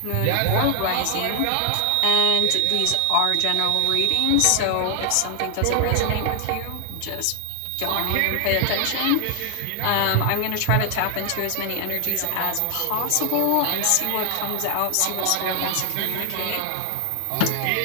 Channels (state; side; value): different; both; correlation 0.00